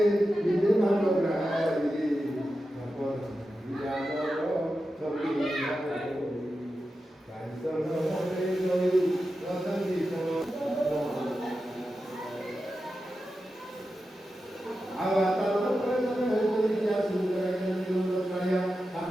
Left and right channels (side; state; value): both; normal; correlation 0.91